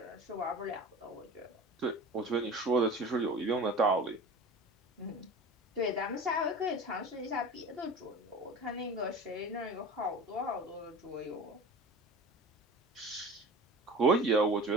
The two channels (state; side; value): normal; both; correlation 0.35